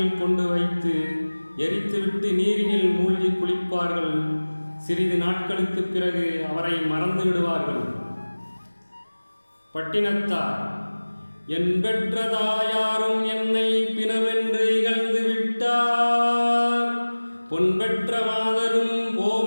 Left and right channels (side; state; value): both; inverted; correlation -1.00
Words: கொண்டு வைத்து எரித்துவிட்டு நீரினில் மூழ்கி குளிப்பார்கள். சிறிது நாட்களுக்கு பிறகு அவரை மறந்து விடுவார்கள். பட்டினத்தார்: என் பெற்ற தாயாரும் என்னை பிணமென்று இகழ்ந்து விட்டார். பொன் பெற்ற மாதரும்